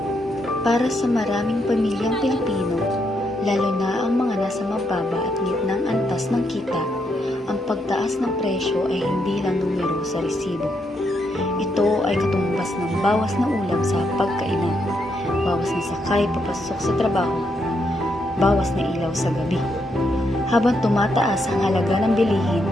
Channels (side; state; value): both; normal; correlation 0.79